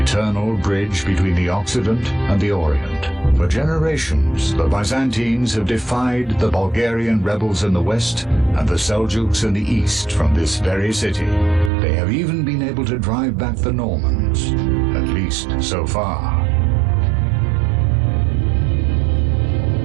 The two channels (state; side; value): drops out; left; at 11.7 s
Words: bridge between the Occident and the Orient. For generations, the Byzantines have defied the Bulgarian rebels in the west and the Seljuks in the east from this very city. They have even been able to drive back the Normans, at least so far.